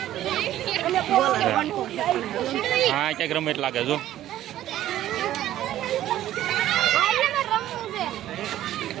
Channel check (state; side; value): quieter; left; 13.1 dB